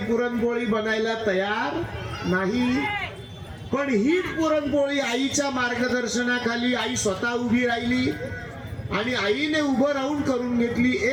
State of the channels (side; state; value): both; identical; correlation 1.00